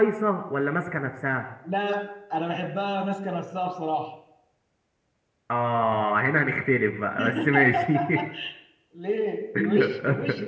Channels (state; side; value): identical; both; correlation 1.00